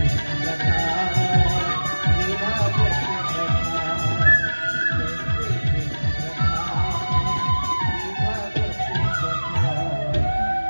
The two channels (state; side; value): inverted; both; correlation -1.00